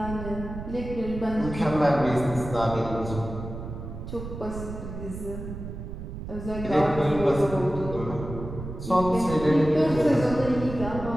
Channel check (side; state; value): right; noise; rumble, 9 dB below the sound